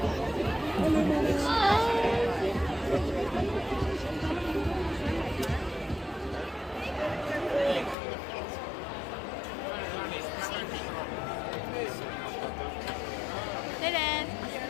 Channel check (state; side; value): drops out; right; at 8.0 s